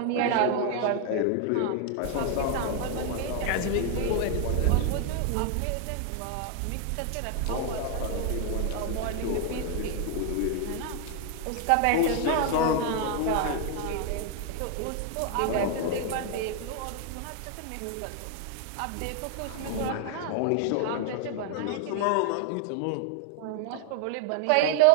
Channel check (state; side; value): different; both; correlation 0.00